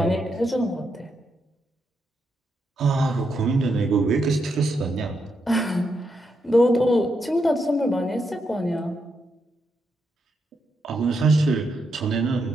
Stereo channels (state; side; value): normal; both; correlation 0.82